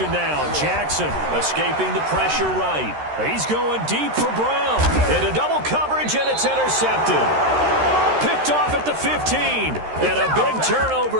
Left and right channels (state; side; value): late; left; 13 ms